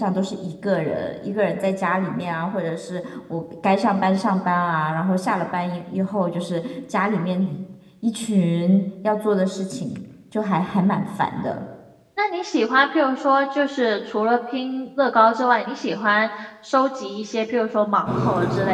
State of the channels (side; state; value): both; identical; correlation 1.00